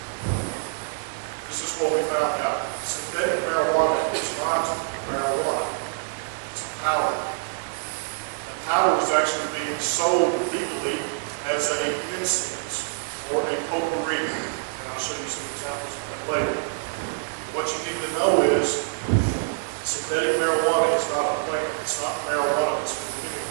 this is what we found out. Synthetic marijuana is not marijuana. It's a powder. And powder was actually being sold legally as an incense or a potpourri. And I'll show you some examples of that later. But what you need to know is synthetic marijuana is not a plant. It's not marijuana that's been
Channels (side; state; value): left; silent; 56 dB below the other